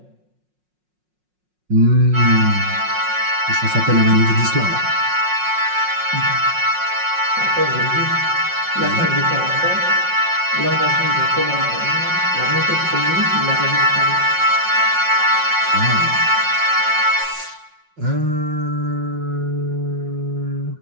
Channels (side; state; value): left; late; 5.5 ms